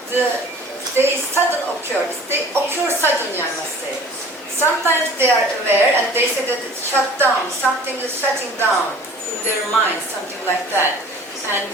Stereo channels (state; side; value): normal; both; correlation 0.47